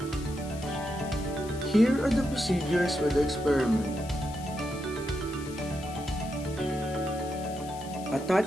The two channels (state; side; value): noise; left; hiss, 17 dB below the sound